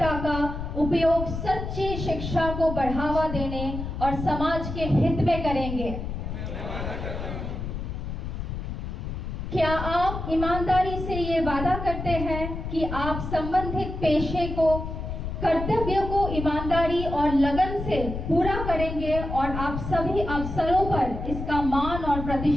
का उपयोग सच्ची शिक्षा को बढ़ावा देने और समाज के हित में करेंगे? क्या आप ईमानदारी से ये वादा करते हैं कि आप संबंधित पेशे को, कर्तव्य को ईमानदारी और लगन से पूरा करेंगे और आप सभी अवसरों पर इसका मान और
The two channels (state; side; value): noise; left; rumble, 6 dB below the sound